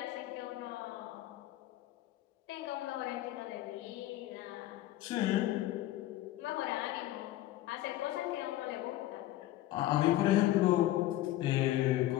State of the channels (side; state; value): right; quieter; 15.1 dB